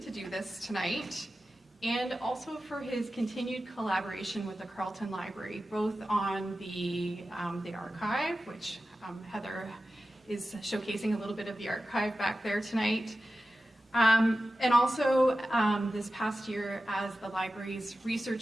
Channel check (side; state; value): both; normal; correlation 0.93